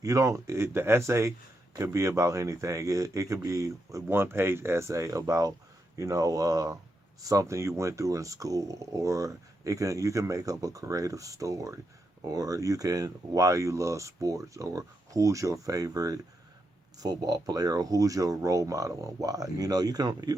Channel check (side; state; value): both; normal; correlation 0.83